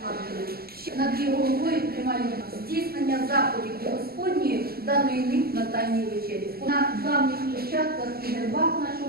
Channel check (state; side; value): late; left; 0.45 ms